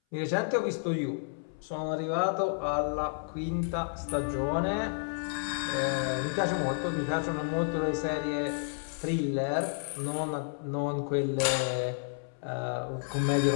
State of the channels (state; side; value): silent; right; 57 dB below the other